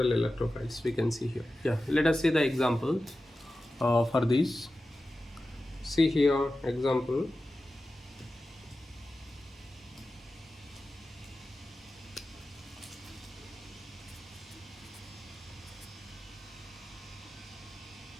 electrophiles. We can see here. Yeah, let us see the example for this. See here example.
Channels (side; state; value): both; normal; correlation 0.94